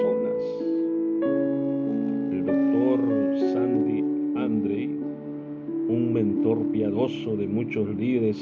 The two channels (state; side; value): identical; both; correlation 1.00